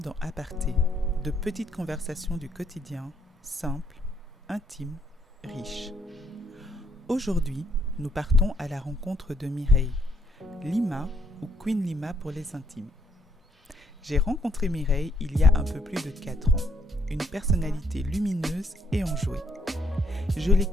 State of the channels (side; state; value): both; normal; correlation 0.70